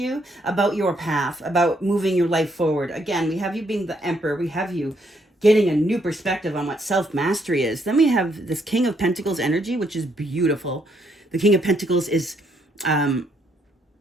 about your path, about moving your life forward. Again, we have you being the Emperor. We have you getting a new perspective on what self-mastery is. Then we have this King of Pentacles energy, which is beautiful. The King of Pentacles is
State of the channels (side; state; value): both; normal; correlation 0.73